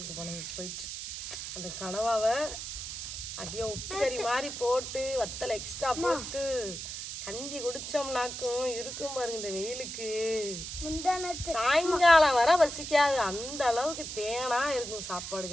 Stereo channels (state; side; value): noise; right; hiss, 7 dB below the sound